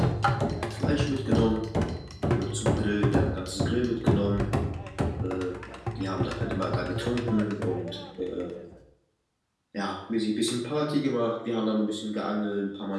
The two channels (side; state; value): both; identical; correlation 1.00